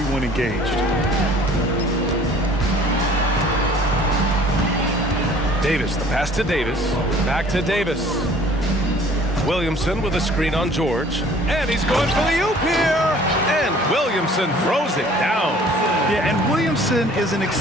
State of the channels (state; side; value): normal; both; correlation 0.52